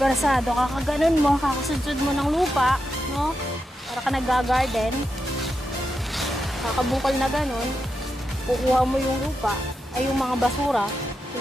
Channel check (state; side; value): normal; both; correlation 0.87